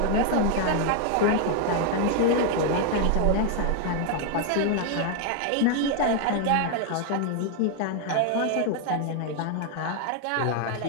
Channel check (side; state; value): both; different; correlation 0.00